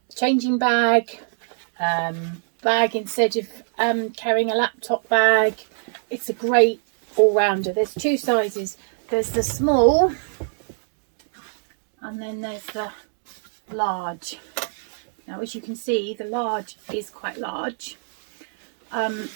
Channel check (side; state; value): left; silent; digital silence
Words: changing bag, instead of carrying a laptop bag. It's a great all-rounder. There's two sizes. There's the small and then there's the large. Now, as you can see, the large is quite large.